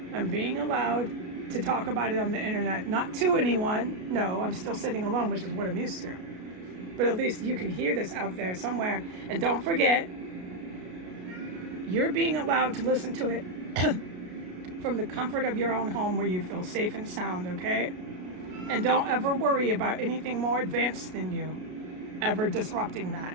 I'm being allowed to talk about it on the internet, not to anyone. No, I'm still sitting alone, which is what I'm used to. But at least you can hear this out there somewhere. And don't forget, you're being allowed to listen to it from the comfort of your own home where you feel safe and sound, okay? And don't ever worry about anything more advanced than you ever disrupting that.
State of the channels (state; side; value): late; left; 33 ms